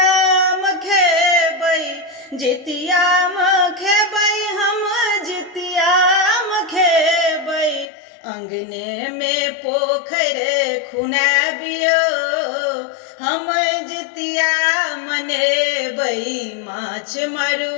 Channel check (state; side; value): drops out; right; at 7.9 s